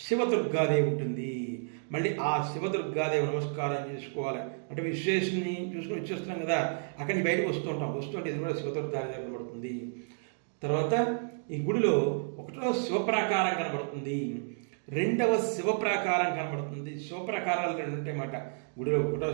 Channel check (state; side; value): silent; left; digital silence